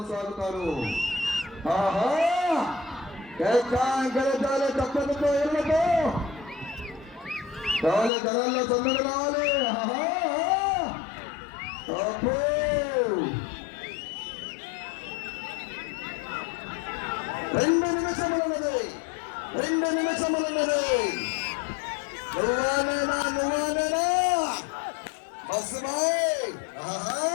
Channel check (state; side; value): drops out; right; at 8.1 s